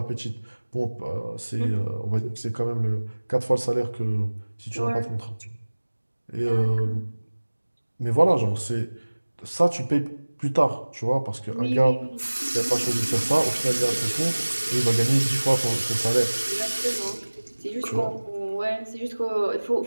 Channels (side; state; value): both; inverted; correlation -1.00